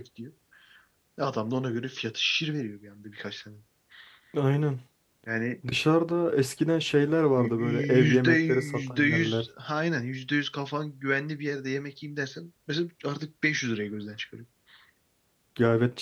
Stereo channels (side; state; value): both; identical; correlation 1.00